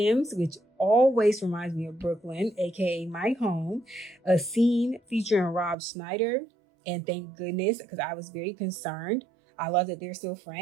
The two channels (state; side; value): drops out; left; at 5.8 s